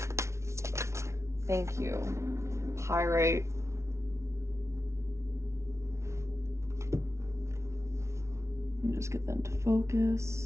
Thank you. Pyrite. Let me just get them to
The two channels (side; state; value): left; late; 0.13 ms